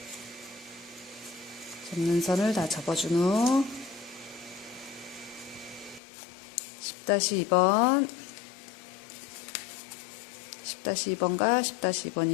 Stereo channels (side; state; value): right; drops out; at 6.0 s